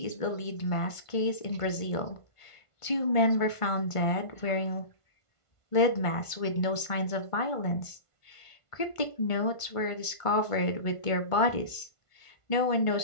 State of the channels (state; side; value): late; right; 1.5 ms